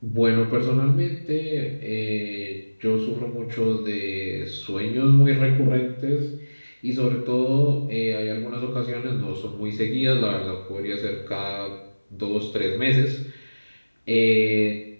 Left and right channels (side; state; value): both; inverted; correlation -1.00